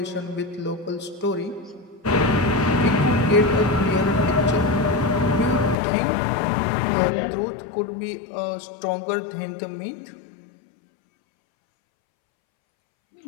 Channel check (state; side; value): drops out; right; at 5.8 s